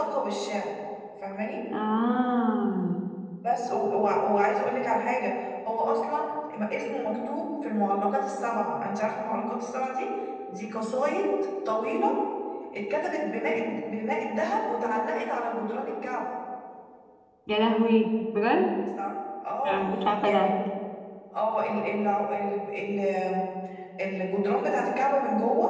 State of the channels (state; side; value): identical; both; correlation 1.00